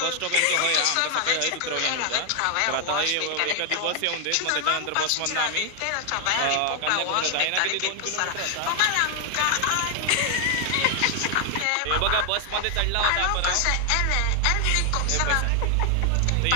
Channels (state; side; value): different; both; correlation 0.00